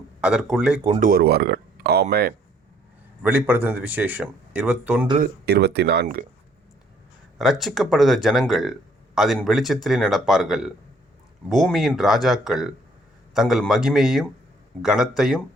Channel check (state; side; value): normal; both; correlation 0.63